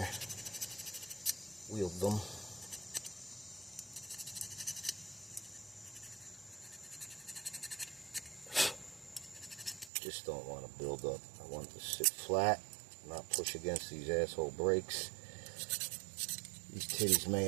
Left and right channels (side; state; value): left; drops out; at 9.9 s